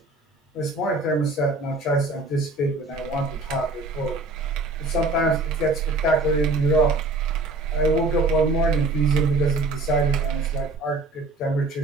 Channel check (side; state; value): left; quieter; 3.0 dB